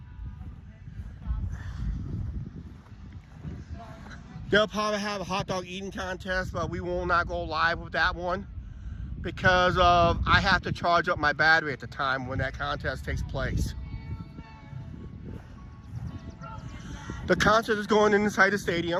They'll probably have a hot dog eating contest, but we will not go live with that one because I have to charge up my battery at the time when that contest takes place. The concert is going inside the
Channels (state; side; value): identical; both; correlation 1.00